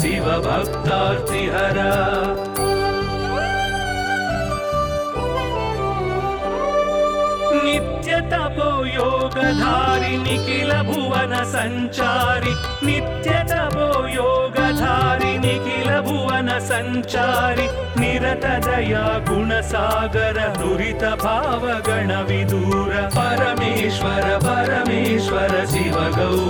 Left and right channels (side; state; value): both; identical; correlation 1.00